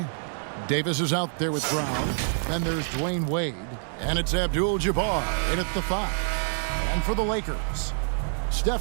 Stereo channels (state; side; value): silent; left; 60 dB below the other